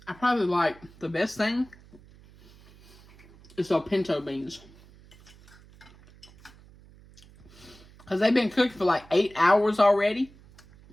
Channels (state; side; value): noise; right; hum, 24 dB below the sound